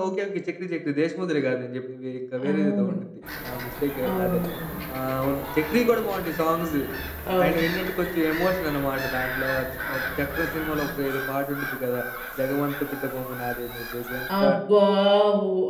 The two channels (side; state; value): both; identical; correlation 1.00